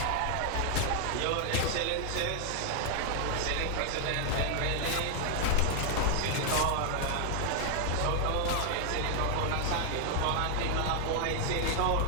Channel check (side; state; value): both; different; correlation 0.00